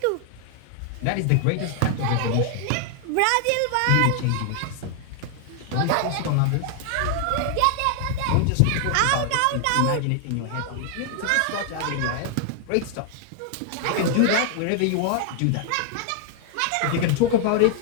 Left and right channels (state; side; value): different; both; correlation 0.00